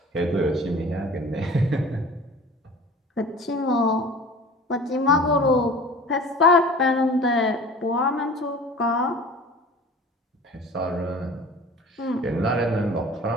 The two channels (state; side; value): normal; both; correlation 0.42